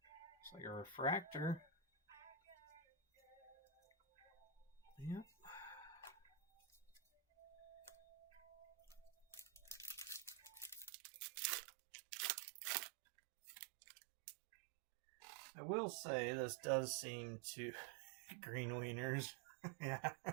It's like a refractor. Yep. I will say this does seem to green wieners. Yeah.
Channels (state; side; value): drops out; left; at 10.9 s